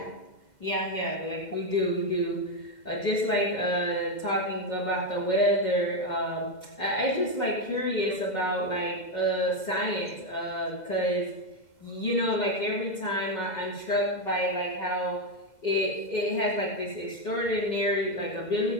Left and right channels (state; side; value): late; right; 2.0 ms